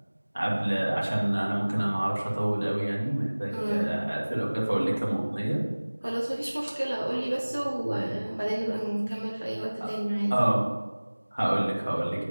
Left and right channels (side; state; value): both; inverted; correlation -1.00